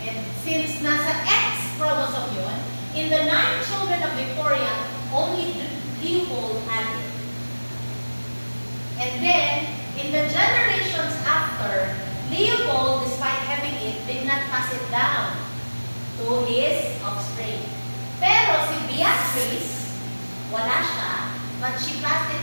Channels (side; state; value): both; inverted; correlation -1.00